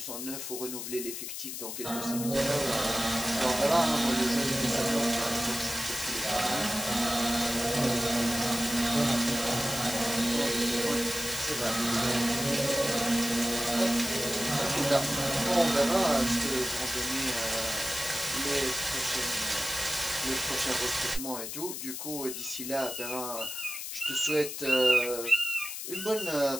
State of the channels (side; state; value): left; noise; hiss, 6 dB below the sound